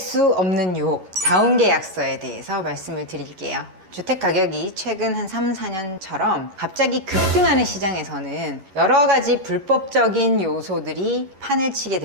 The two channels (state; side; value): late; left; 11 ms